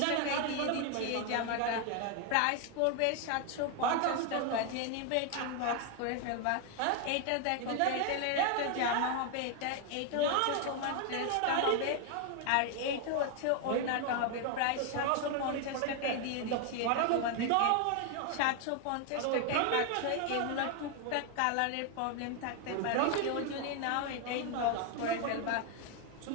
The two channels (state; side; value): different; both; correlation 0.01